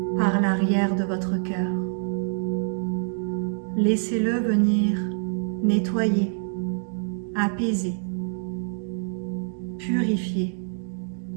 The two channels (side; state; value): left; silent; digital silence